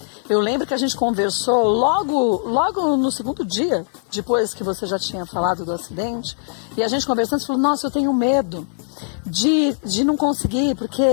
eu lembro que a gente conversou logo no segundo dia, depois que você já tinha falado do acidente, e a gente conversando, você falou, nossa, eu tenho medo de não conseguir,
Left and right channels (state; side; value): silent; right; 65 dB below the other